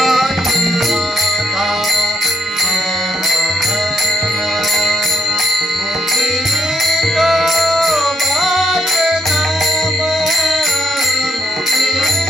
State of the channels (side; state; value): both; normal; correlation 0.74